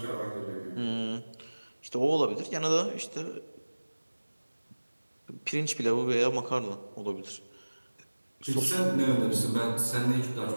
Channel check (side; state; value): both; inverted; correlation -1.00